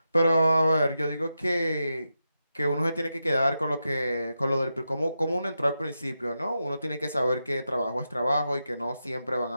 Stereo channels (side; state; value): both; inverted; correlation -0.88